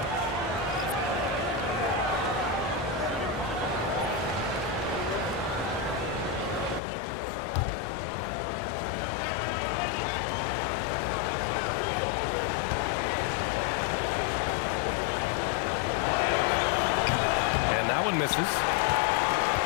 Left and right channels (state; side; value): drops out; right; at 6.8 s